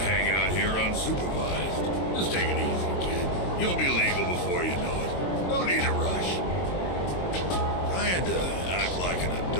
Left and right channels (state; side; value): late; right; 22 ms